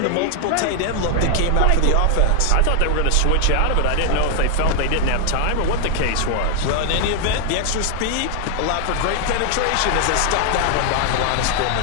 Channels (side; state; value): both; different; correlation 0.00